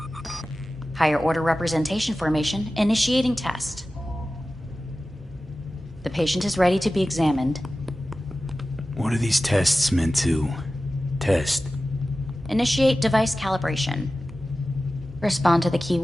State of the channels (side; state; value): both; normal; correlation 0.95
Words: Higher order representation formation, initiating test. The patient is ready to be examined. What are these tests meant to test? Initiate device calibration. Respond to the